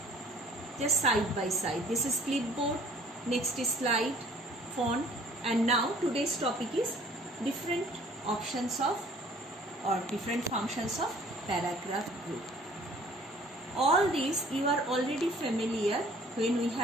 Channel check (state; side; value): normal; both; correlation 0.54